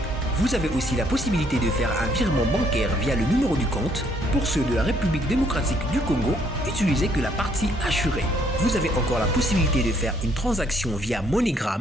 Vous avez aussi la possibilité de faire un virement bancaire via le numéro du compte. Pour ceux de la République démocratique du Congo, utilisez que la partie assurée. Vous avez encore la possibilité de faire une transaction via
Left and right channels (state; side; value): normal; both; correlation 0.67